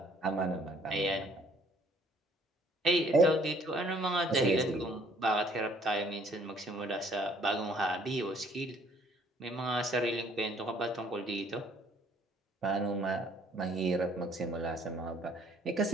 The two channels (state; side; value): normal; both; correlation 0.61